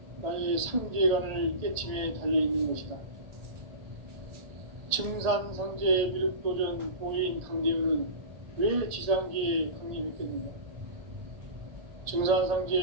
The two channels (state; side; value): late; left; 1.8 ms